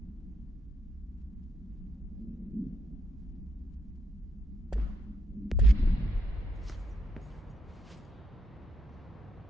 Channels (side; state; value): both; normal; correlation 0.77